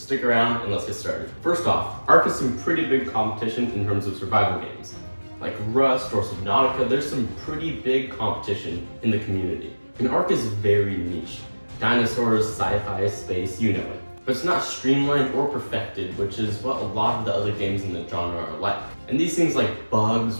around and let's get started. First off, ARK has some pretty big competition in terms of survival games. Like Rust or Subnautica, there's some pretty big competition in the community. And ARK is very niche. Dinosaurs, sci-fi, space, you know it. But it's not streamlined or perfected, which is what a lot of the other games in the genre are like. And these things like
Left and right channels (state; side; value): inverted; both; correlation -1.00